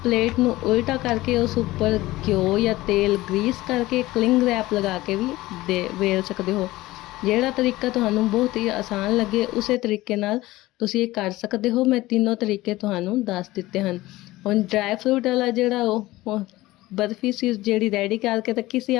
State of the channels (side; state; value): right; quieter; 18.0 dB